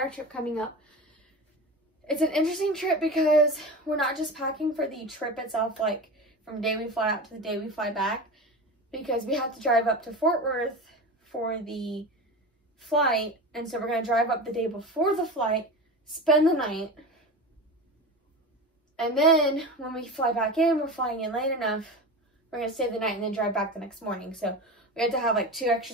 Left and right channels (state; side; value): normal; both; correlation 0.28